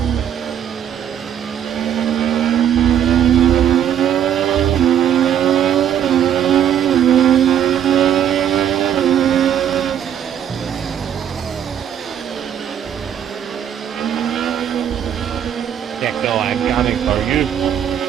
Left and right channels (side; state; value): left; quieter; 9.5 dB